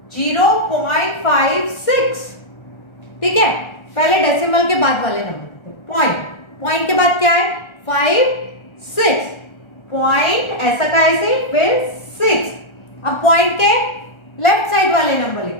0.56, ठीक है। पहले डेसिमल के बाद वाले नंबर, पॉइंट, पॉइंट के बाद क्या है? 5 6, पॉइंट ऐसा का ऐसे, फिर 6। अब पॉइंट के लेफ्ट साइड वाले नंबर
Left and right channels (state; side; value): late; right; 1.3 ms